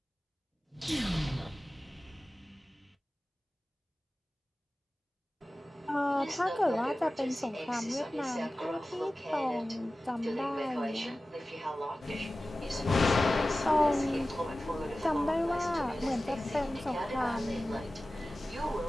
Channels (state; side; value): normal; both; correlation 0.96